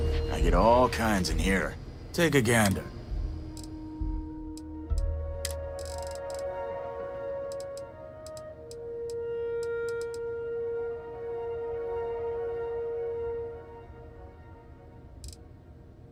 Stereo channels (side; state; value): both; identical; correlation 1.00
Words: I get all kinds in here. Take a gander.